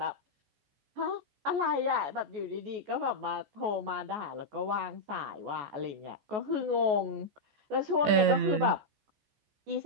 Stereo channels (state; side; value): late; left; 14 ms